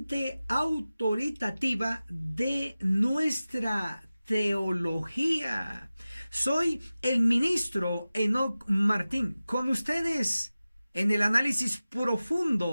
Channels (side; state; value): both; inverted; correlation -0.96